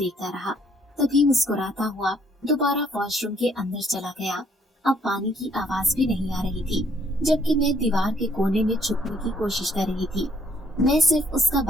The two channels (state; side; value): normal; both; correlation 0.65